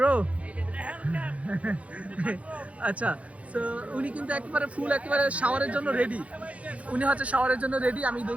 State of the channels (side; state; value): left; late; 0.065 ms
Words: আচ্ছা, তো উনি কিন্তু একেবারে ফুল, একেবারে শাওয়ারের জন্য রেডি, উনি হচ্ছে শাওয়ারের জন্য রেডি। আমি